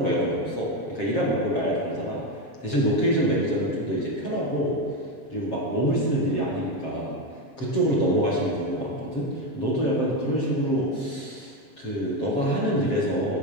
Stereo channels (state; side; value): late; right; 7.5 ms